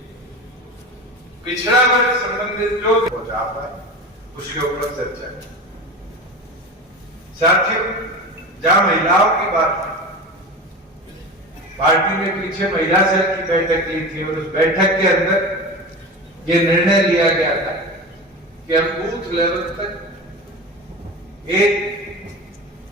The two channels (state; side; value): normal; both; correlation 0.29